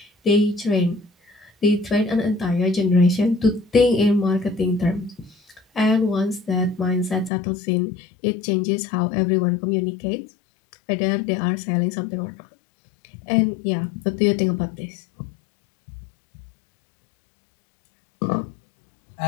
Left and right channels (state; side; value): drops out; right; at 7.3 s